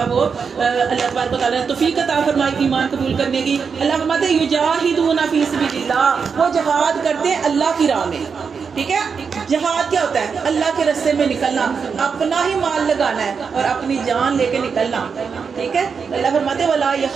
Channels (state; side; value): quieter; left; 5.9 dB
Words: وہ اللہ تبارک و تعالیٰ نے توفیق عطا فرمائی ایمان قبول کرنے کی. اللہ فرماتے ہیں یجاہدون فی سبیل اللہ، وہ جہاد کرتے ہیں اللہ کی راہ میں. ٹھیک ہے، جہاد کیا ہوتا ہے؟ اللہ کے راستے میں نکلنا، اپنا ہی مال لگانا ہے اور اپنی جان لے کے نکلنا. ٹھیک ہے، اللہ فرماتے ولا